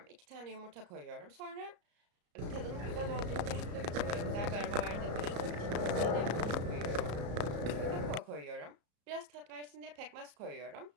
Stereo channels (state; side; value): late; left; 34 ms